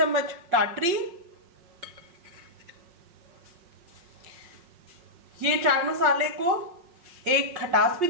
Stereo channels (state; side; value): late; left; 5.6 ms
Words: टाटरी। ये चाट मसाले को एक खटास भी